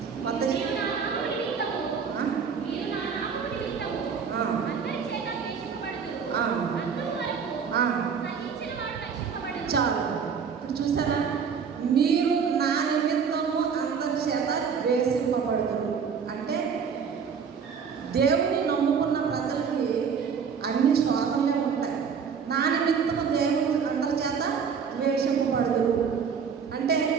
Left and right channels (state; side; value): quieter; left; 6.5 dB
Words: చాలు. ఇప్పుడు చూసారా, మీరు నా నిమిత్తము అందరి చేత ద్వేషింపబడతారు అంటే దేవుని నమ్ముకున్న ప్రజలకి అన్ని శోధనలే ఉంటాయి. నా నిమిత్తము దేవుడు అందరి చేత ద్వేషింపబడదు అంటే